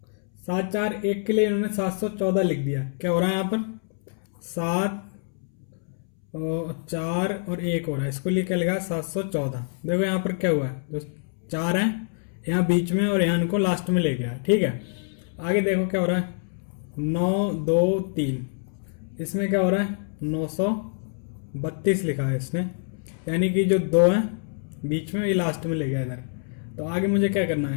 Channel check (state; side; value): silent; right; 61 dB below the other